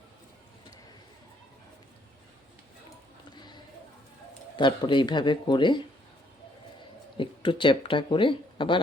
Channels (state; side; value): normal; both; correlation 0.67